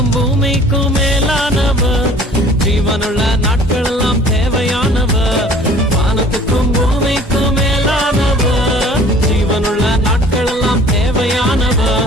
பூமிக்கும் மேலானவர், ஜீவனுள்ள நாட்கள் எல்லாம் தேவையானவர். வானத்துக்கும் பூமிக்கும் மேலானவர், ஜீவனுள்ள நாட்கள் எல்லாம் தேவையானவர்.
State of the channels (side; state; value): both; normal; correlation 0.51